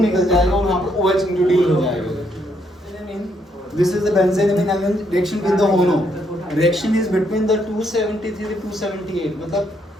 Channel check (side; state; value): both; normal; correlation 0.74